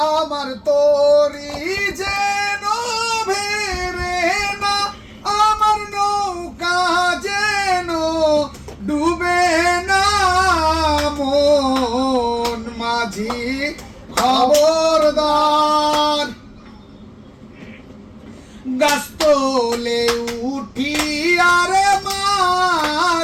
আমার তরি যেন ভেরে না, আমার নৌকা যেন ডুবে না। মন মাঝি খবরদার। গাছ তোলে উঠি আরে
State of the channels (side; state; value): both; identical; correlation 1.00